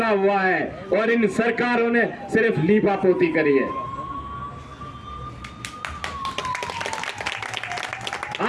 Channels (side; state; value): both; identical; correlation 1.00